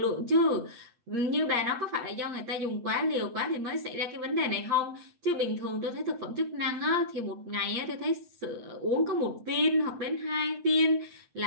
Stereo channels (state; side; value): late; left; 8.4 ms